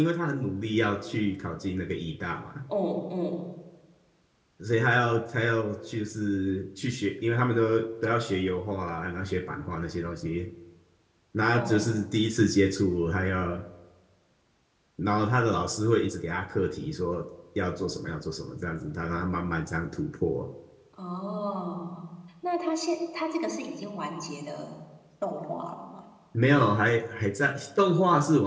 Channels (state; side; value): identical; both; correlation 1.00